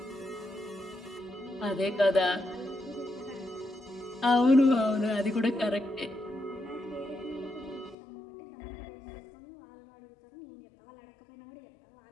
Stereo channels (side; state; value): right; drops out; at 8.0 s